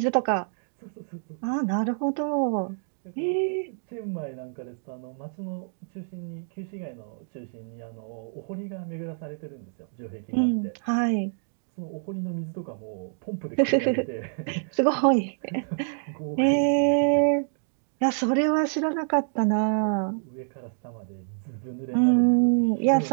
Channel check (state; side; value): silent; left; digital silence